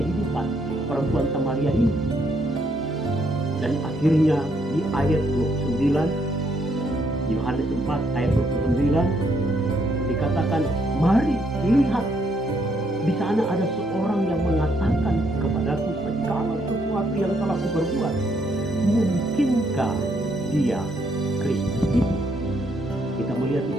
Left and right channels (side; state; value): both; normal; correlation 0.73